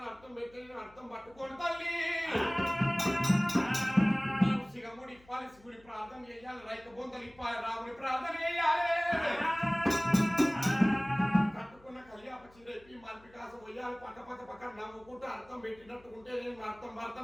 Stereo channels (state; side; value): noise; left; hum, 27 dB below the sound